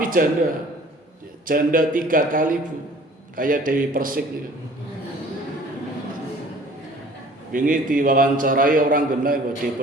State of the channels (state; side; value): normal; both; correlation 0.51